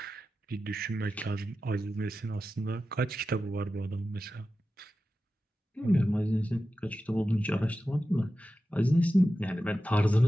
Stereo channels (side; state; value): both; normal; correlation 0.93